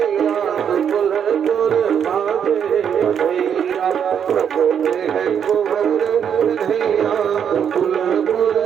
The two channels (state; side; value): quieter; left; 8.1 dB